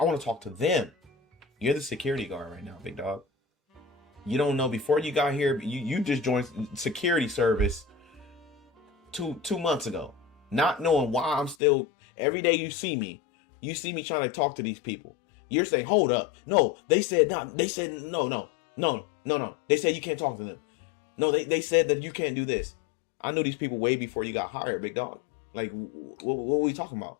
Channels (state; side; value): drops out; right; at 11.6 s